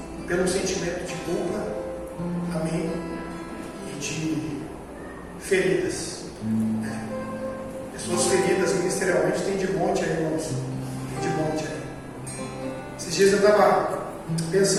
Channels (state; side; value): identical; both; correlation 1.00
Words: pelo sentimento de culpa, amém, e de feridas. Pessoas feridas ministerialmente tem de monte aí, irmãos. Tem de monte aí. Esses dias eu estava